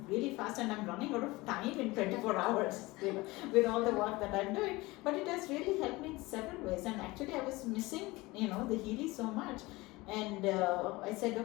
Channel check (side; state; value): right; quieter; 21.5 dB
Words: really fast, and I'm running out of time in 24 hours, with all the work that I'm doing. But it has really helped me in several ways. And actually I was missing, the Healy so much. And I said,